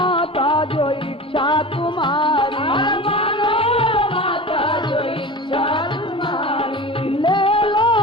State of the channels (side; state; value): both; normal; correlation 0.32